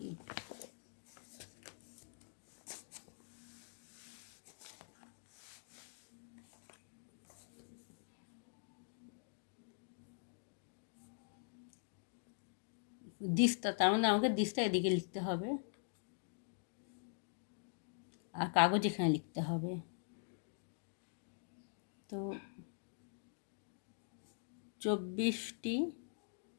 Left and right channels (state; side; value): silent; right; digital silence